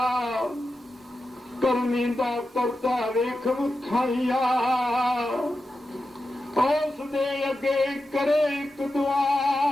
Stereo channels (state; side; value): normal; both; correlation 0.90